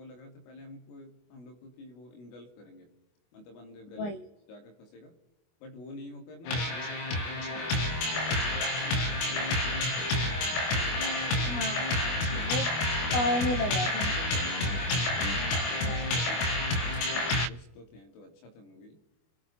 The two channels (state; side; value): late; right; 24 ms